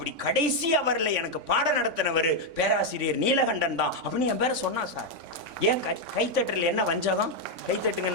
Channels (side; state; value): left; late; 3.5 ms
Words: கடைசி அவரில் எனக்கு பாடம் நடத்தினவர் பேராசிரியர் நீலகண்டன் தான் அப்படின்னு என் பேரை சொன்னா சார். ஏன் கைத்தட்டல் என்ன வஞ்சகம்? கைத்தட்டுங்க